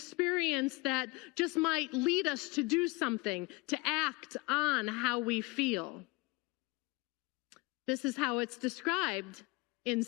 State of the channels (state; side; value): quieter; right; 24.5 dB